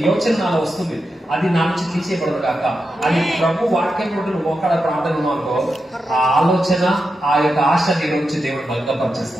యోచన నాలో వస్తుంది, అది నా నుంచి తీసేయకూడదు కాక, అది ప్రభు వాక్యం నుండి నువ్వు ఒక్కడ ప్రార్థన అనుకో, ఆ ఆలోచన ఆ యొక్క ఆశ నీ నుంచి దేవుడు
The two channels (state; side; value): normal; both; correlation 0.88